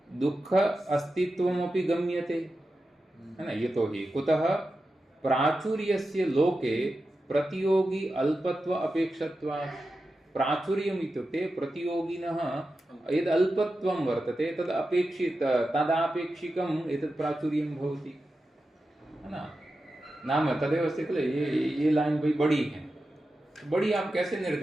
दुःख अस्तित्वमपि गम्यते, है न? यतोहि कुतः प्राचुर्यस्य लोके प्रतियोगी अल्पत्व अपेक्षत्वात्। प्राचुर्यम् इत्युक्ते प्रतियोगिनः यद् अल्पत्वं वर्तते तदापेक्षिकम् एतत् प्राचुर्यं भवति, है ना? नाम तदेव अस्ति किल, ये लाइन भाई बड़ी है। बड़ी आप कैसे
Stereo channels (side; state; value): both; normal; correlation 0.91